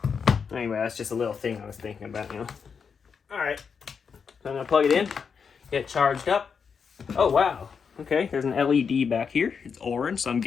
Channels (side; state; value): right; quieter; 6.2 dB